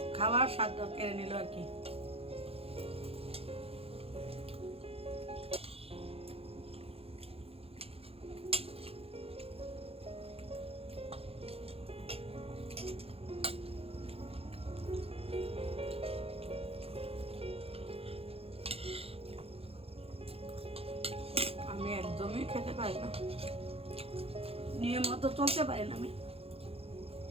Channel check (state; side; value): late; left; 0.28 ms